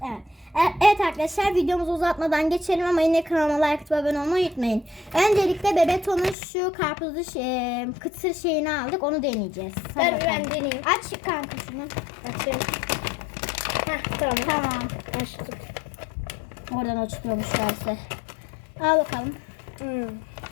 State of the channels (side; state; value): right; drops out; at 6.4 s